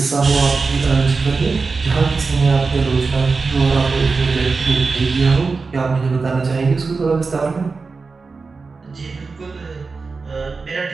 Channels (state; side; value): quieter; left; 4.3 dB